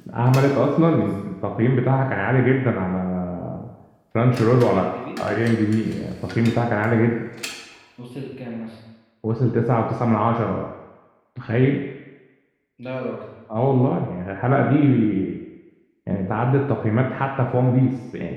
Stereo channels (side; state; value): both; identical; correlation 1.00